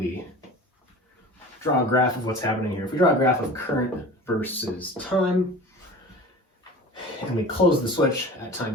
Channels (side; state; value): both; normal; correlation 0.38